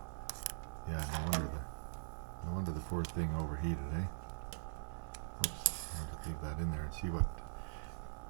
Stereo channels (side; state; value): left; silent; digital silence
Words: yeah, no wonder the poor thing overheated, eh? Oops, I'll just leave that in there and see